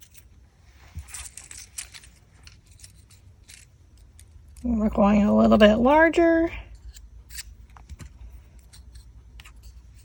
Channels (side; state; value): both; identical; correlation 1.00